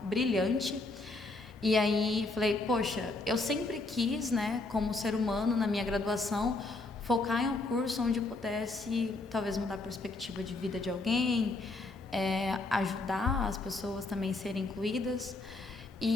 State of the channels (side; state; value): right; quieter; 3.2 dB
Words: brilhante. E aí falei, poxa, eu sempre quis, né, como ser humano, na minha graduação, focar em um curso onde eu pudesse talvez mudar a perspectiva de vida de alguém, ajudar as pessoas também a serem incluídas.